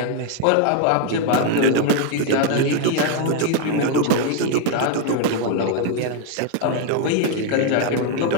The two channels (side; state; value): both; different; correlation 0.01